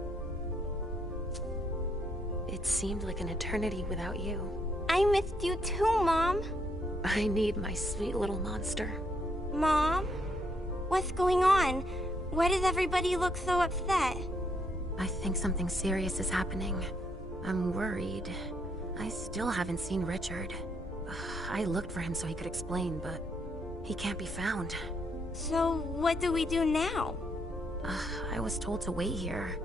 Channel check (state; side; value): noise; left; rumble, 17 dB below the sound